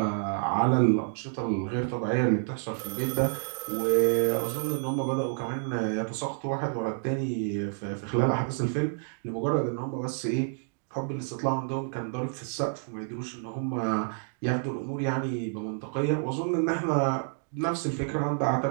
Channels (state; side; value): silent; left; 59 dB below the other